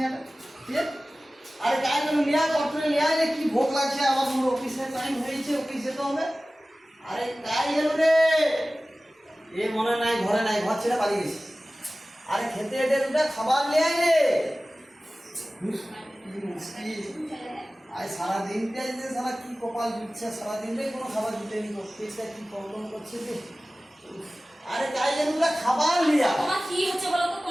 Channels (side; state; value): both; normal; correlation 0.97